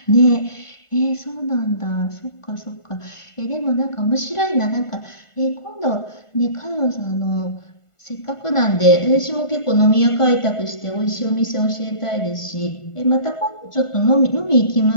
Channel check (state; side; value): late; right; 1.5 ms